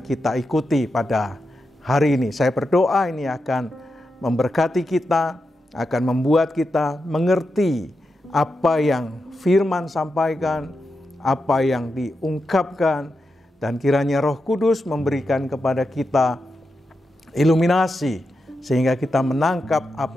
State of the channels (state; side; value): normal; both; correlation 0.88